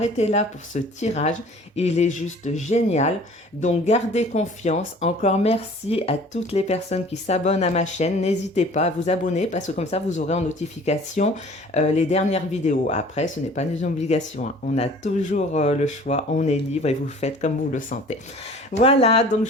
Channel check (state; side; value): normal; both; correlation 0.48